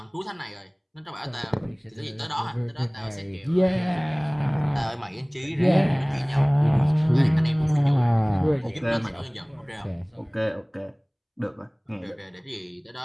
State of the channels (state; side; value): identical; both; correlation 1.00